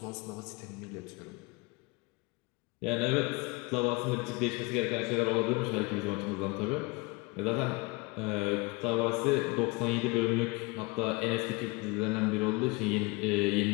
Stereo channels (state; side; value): quieter; right; 26.2 dB